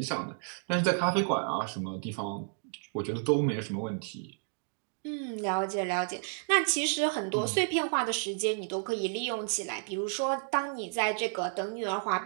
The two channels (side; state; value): left; silent; 57 dB below the other